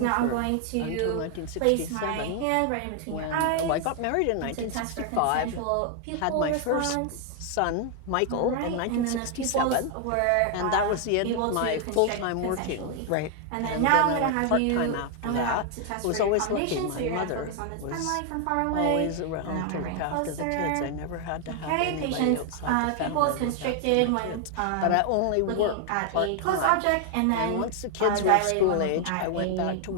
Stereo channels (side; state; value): both; different; correlation 0.00